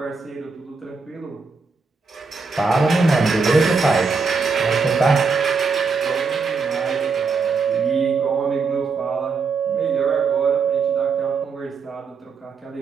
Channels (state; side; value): quieter; left; 4.8 dB